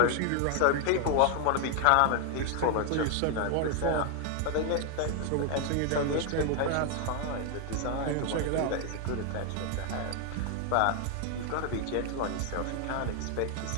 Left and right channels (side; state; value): both; different; correlation 0.00